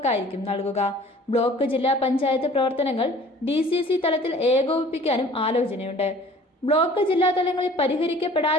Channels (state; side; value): normal; both; correlation 0.49